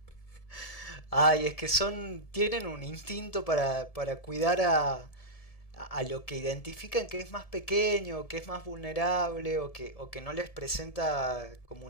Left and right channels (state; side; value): late; right; 1.7 ms